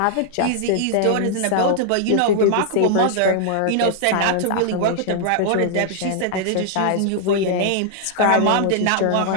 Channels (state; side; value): different; both; correlation 0.00